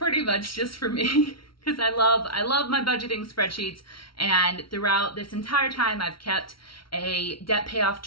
much just for me. Because I love my budgeting spreadsheets, and throughout this entire time I've kept a debt payoff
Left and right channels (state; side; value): late; right; 0.74 ms